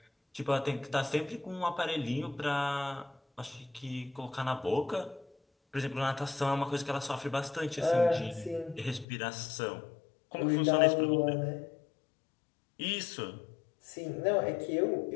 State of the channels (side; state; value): right; drops out; at 9.1 s